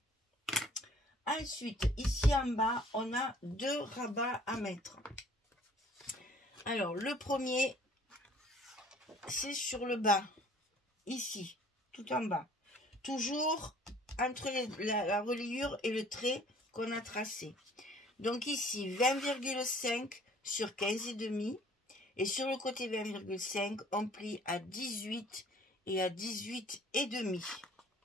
Ensuite, ici en bas, on a 2 rabats à mettre. Alors, le premier, c'est sur le bas. Ici, tout en bas. Toujours entre la reliure et le trait qu'on a tracé. Donc ici, 20,5 sur 15,5. Et sur le côté 20,5, on plie à 18 et à 18,5.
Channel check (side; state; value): both; normal; correlation 0.54